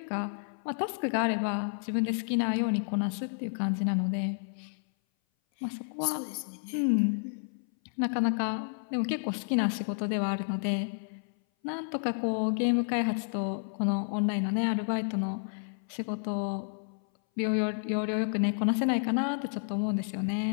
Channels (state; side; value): silent; right; 57 dB below the other